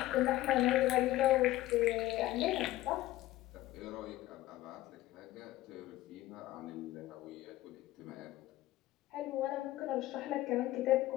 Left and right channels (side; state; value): right; quieter; 15.9 dB